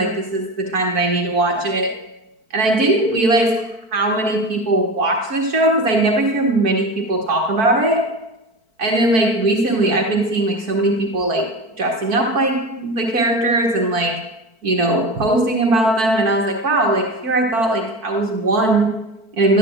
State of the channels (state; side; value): late; left; 4.5 ms